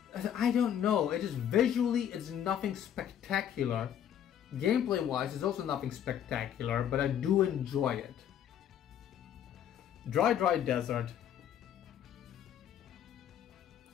I don't know, it just visually it's nothing spectacular. Gameplay wise it's also nothing spectacular, but I do enjoy it. Dry Desert.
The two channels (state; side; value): quieter; right; 9.8 dB